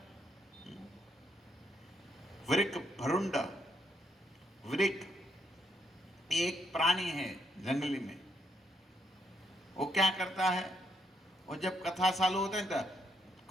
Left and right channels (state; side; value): normal; both; correlation 0.75